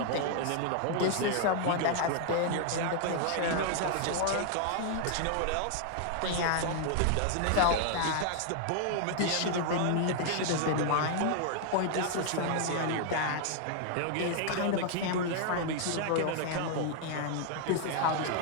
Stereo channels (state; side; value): different; both; correlation 0.00